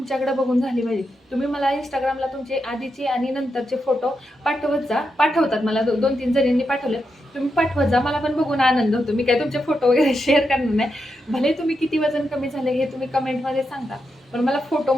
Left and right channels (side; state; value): both; normal; correlation 0.85